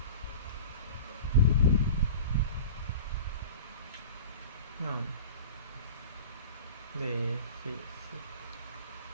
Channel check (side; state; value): both; inverted; correlation -0.35